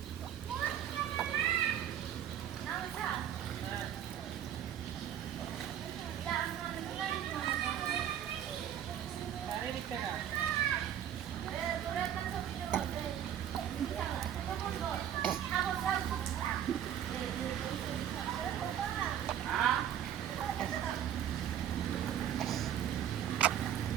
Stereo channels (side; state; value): left; quieter; 10.2 dB